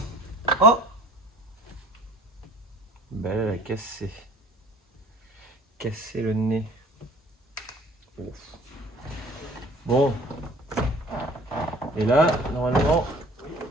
Oh! Ben là, elle a cassé. Cassé le nez. Ouf. Bon. Et là, normalement,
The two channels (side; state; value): both; normal; correlation 0.49